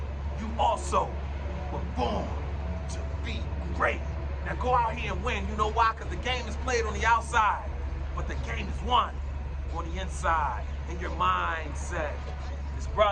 you also were born to be great. Now go out here and win. You know why? Because the game is played on the outside, but the game is won on the inside, in your mindset. This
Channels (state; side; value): identical; both; correlation 1.00